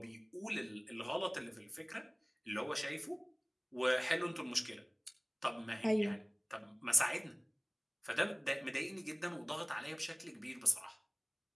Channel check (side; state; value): both; identical; correlation 1.00